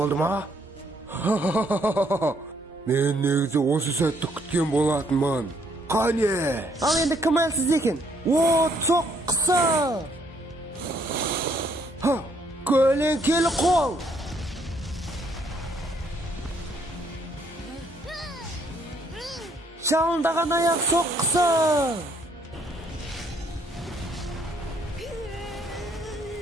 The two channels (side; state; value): both; normal; correlation 0.69